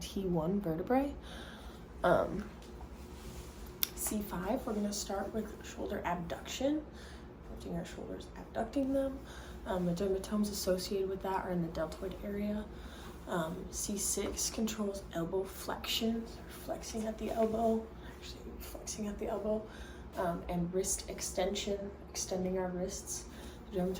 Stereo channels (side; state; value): both; identical; correlation 1.00